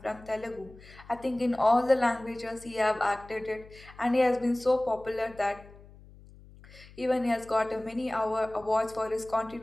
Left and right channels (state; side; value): noise; left; hum, 21 dB below the sound